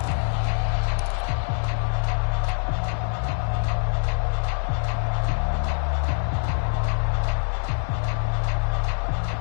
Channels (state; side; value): silent; right; digital silence